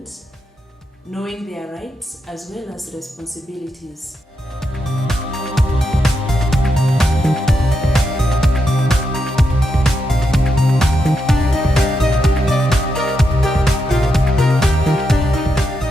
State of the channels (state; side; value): normal; both; correlation 0.83